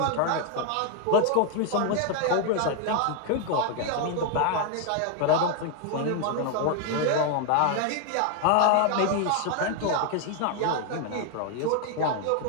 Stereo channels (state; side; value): different; both; correlation 0.01